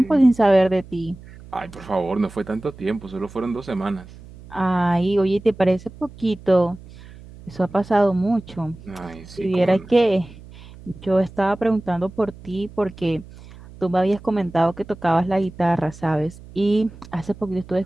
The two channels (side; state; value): right; noise; hum, 19 dB below the sound